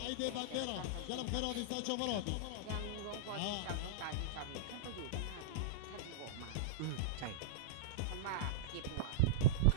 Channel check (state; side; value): different; both; correlation -0.03